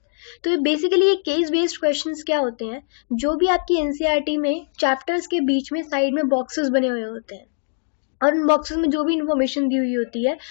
तो बेसिकली ये केस बेस्ड क्वेश्चंस क्या होते हैं, जो भी आपकी एनसीईआरटी में चैप्टर्स के बीच में साइड में बॉक्सेस बने हुए होते हैं और उन बॉक्सेस में जो भी इंफॉर्मेशन दी हुई होती है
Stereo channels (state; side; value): silent; right; digital silence